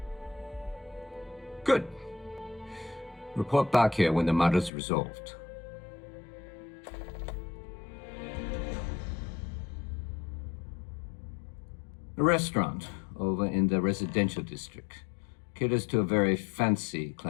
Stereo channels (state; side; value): drops out; right; at 4.7 s